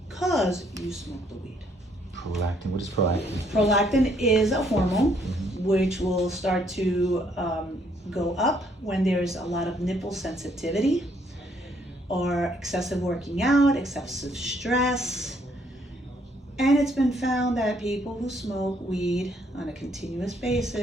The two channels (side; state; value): both; normal; correlation 0.68